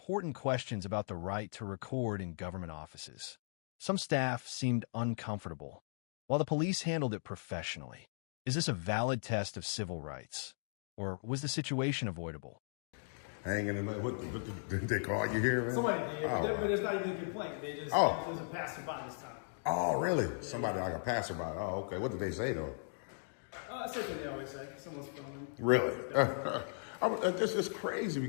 questions about the right to record in government offices. Some staff seemed uncomfortable, while the police handled it professionally. Is this a valid test of civil rights? Or was the situation avoidable? Hanging in the... What did they call you here, man? Somebody did, Oh. but it's not even a complaint. They just Oh. doesn't pass them by this time. Oh, really? Somebody like a passerby. Oh, okay. What did they say though? Same thing they always say. Someone's filming. Really? This is crazy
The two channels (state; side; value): silent; right; digital silence